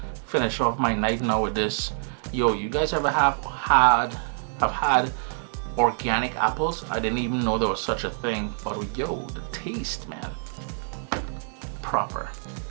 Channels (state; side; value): silent; left; digital silence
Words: finish off my night now with this. Yo, you guys ever have had organic apples? I didn't even know there was such a thing, but yo, the taste, man, proper.